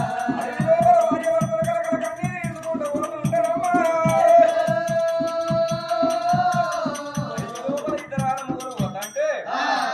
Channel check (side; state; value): both; identical; correlation 1.00